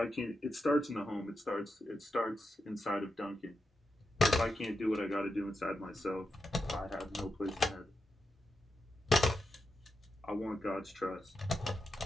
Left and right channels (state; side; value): normal; both; correlation 0.88